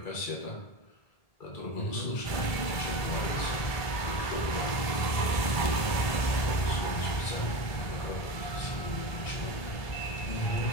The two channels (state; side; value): late; right; 1.8 ms